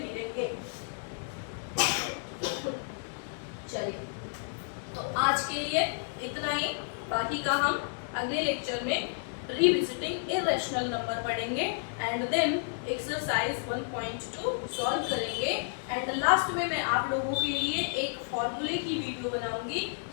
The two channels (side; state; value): right; silent; 57 dB below the other